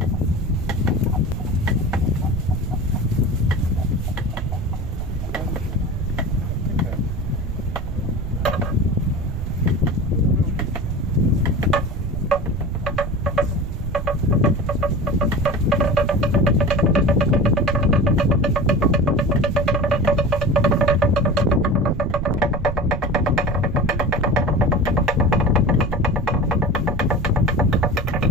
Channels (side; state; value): right; noise; rumble, 5 dB below the sound